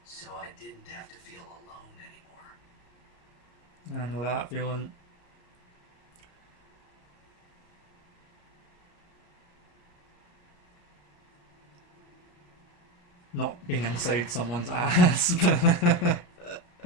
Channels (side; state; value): right; late; 34 ms